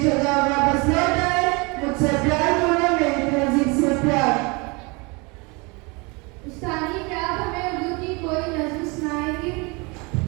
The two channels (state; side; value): quieter; left; 28.2 dB